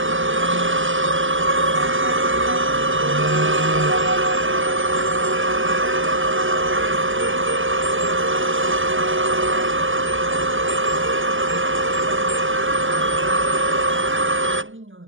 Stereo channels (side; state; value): left; late; 0.57 ms